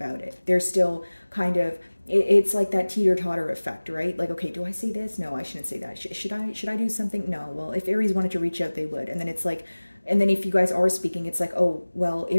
it. They're still kind of, it's like that teeter-totter effect, right? Like, okay, do I say this? No, I shouldn't say that. Should I do something? No. Well, if Aries wanted to reach out, they would. And then it's like, and then if you guys are speaking, it's like, oh, well,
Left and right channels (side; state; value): both; inverted; correlation -1.00